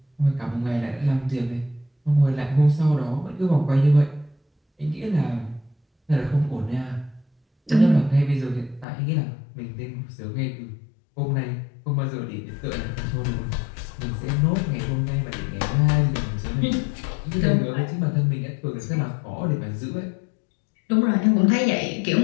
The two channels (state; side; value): drops out; right; at 8.8 s